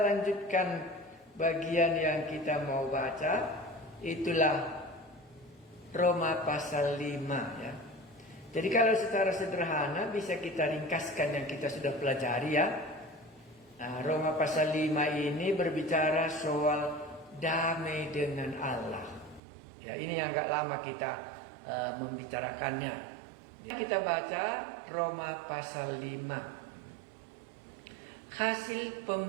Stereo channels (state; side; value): drops out; left; at 19.4 s